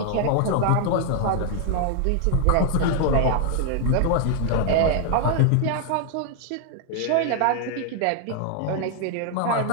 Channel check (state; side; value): different; both; correlation 0.00